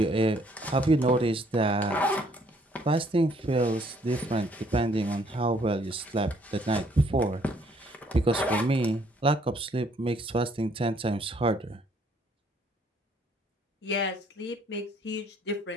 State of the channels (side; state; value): both; normal; correlation 0.64